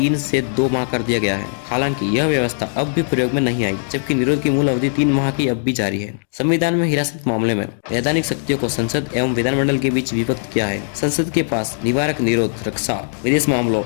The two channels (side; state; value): right; silent; digital silence